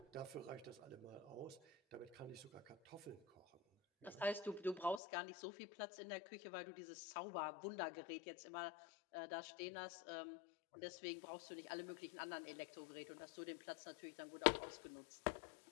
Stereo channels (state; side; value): drops out; right; at 5.0 s